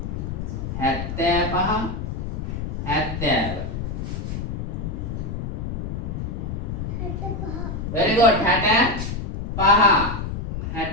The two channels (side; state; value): left; noise; rumble, 4 dB below the sound